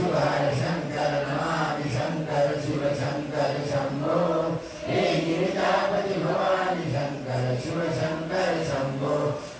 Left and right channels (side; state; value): both; identical; correlation 1.00